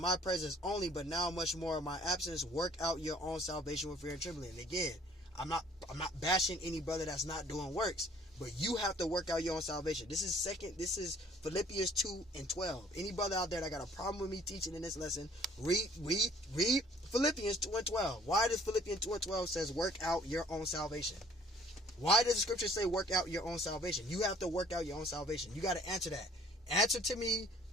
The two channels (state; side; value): normal; both; correlation 0.56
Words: presence only, but now much more in my absence, work out your own salvation with fear and trembling. And again, I'm not bashing any brother that's not doing works, but you have to work out your own salvation. This is Philippians 2 and 12. Any brother out there that got a problem with me teaching in this lesson, read Philippians 2 and 12. Why does Philippians 2 and 12 says work out your own salvation? Why does the scripture say work out your own salvation? You have to work out your own salvation. You got to answer that. Answer to me